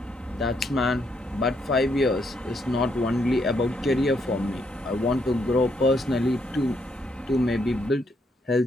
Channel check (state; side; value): normal; both; correlation 0.75